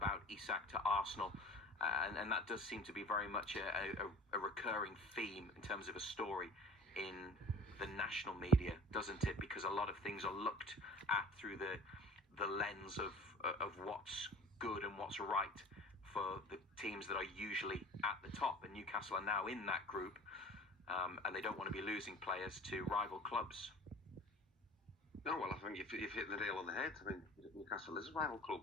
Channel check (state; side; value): normal; both; correlation 0.42